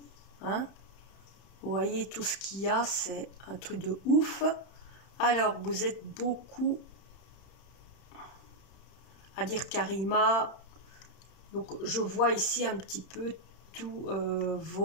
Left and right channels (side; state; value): right; late; 31 ms